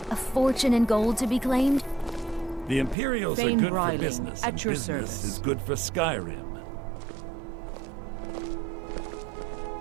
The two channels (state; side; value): drops out; left; at 3.0 s